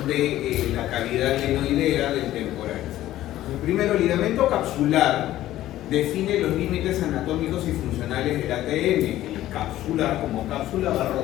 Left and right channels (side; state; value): right; quieter; 14.2 dB